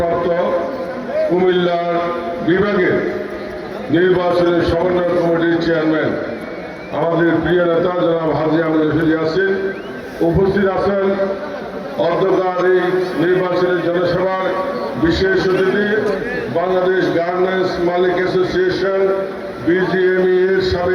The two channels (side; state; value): both; identical; correlation 1.00